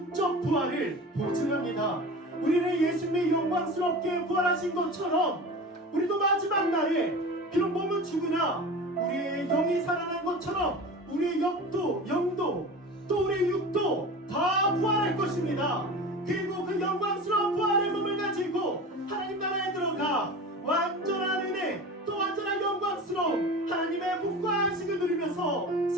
부활을 보증합니다. 우리는 예수님의 영광스럽게 부활하신 것처럼 우리도 마지막 날에 비록 몸은 죽으나 우리의 영이 살아난 것처럼 우리의 영도 또 우리의 육도 다 부활할 것입니다. 그리고 그 영광스러운 부활의 몸을 가지고 하나님 나라에 들어가 완전한 은혜 또 완전한 영광스러운 하나님의 복과 안식을 누리면서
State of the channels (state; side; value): normal; both; correlation 0.33